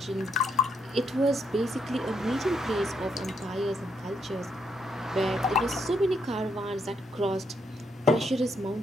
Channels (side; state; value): both; normal; correlation 0.76